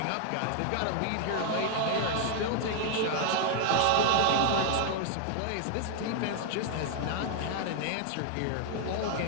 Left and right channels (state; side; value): different; both; correlation 0.00